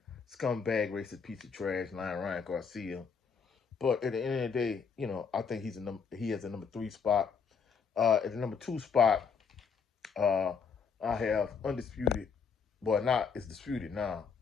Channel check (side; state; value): right; quieter; 6.0 dB